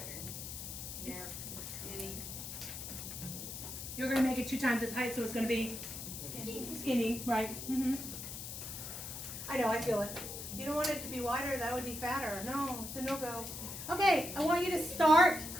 Yeah, skinny. You're going to make it 2 times its height, so it's going to be skinny, right? I know, I feel it. You don't want it to be wider, that would be fatter. No, it's a no-go. Okay, I want you to start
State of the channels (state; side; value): noise; left; hiss, 8 dB below the sound